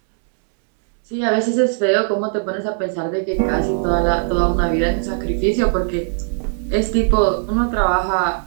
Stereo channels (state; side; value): silent; left; 60 dB below the other